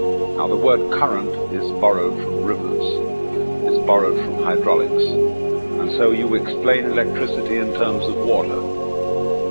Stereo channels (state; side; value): inverted; both; correlation -1.00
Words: Now, the word current is borrowed from rivers. It's borrowed from hydraulics. And so you explain electricity in terms of water.